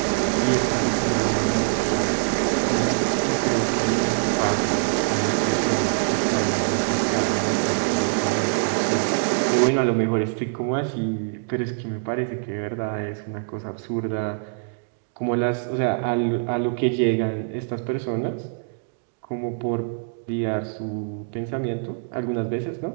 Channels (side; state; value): left; silent; digital silence